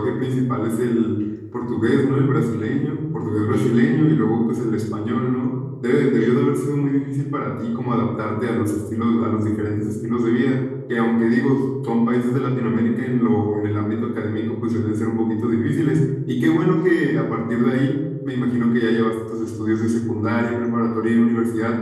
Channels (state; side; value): identical; both; correlation 1.00